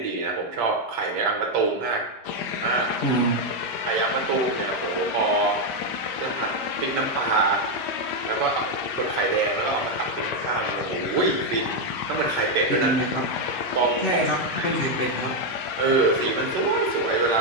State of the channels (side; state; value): both; normal; correlation 0.02